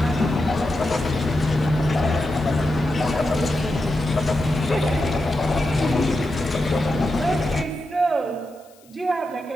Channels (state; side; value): noise; left; hiss, 29 dB below the sound